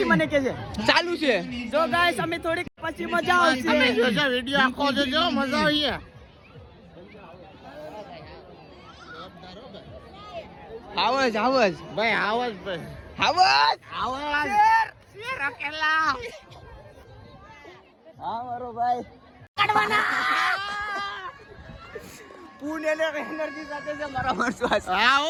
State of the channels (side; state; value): both; identical; correlation 1.00